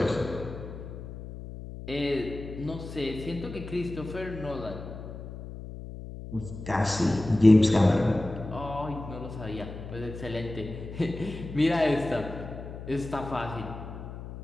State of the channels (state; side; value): noise; left; hum, 11 dB below the sound